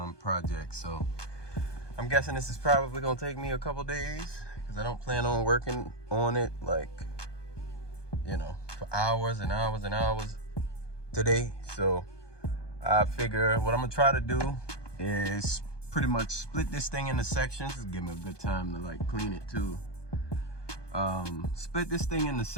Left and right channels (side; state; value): right; late; 1.2 ms